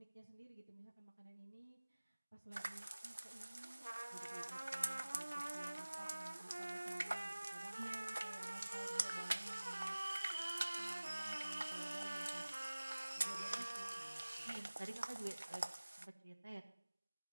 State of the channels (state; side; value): inverted; both; correlation -1.00